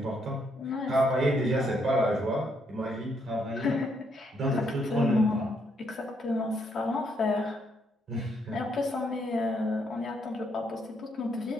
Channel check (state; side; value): normal; both; correlation 0.74